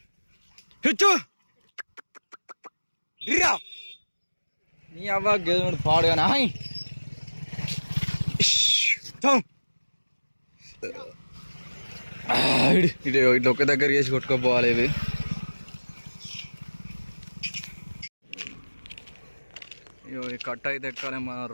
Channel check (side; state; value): both; inverted; correlation -1.00